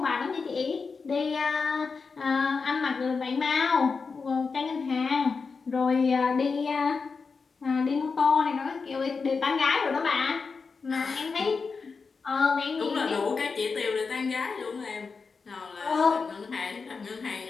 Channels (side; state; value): right; quieter; 4.8 dB